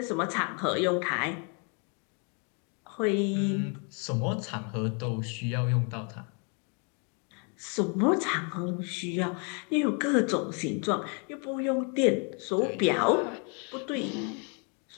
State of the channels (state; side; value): quieter; right; 37.2 dB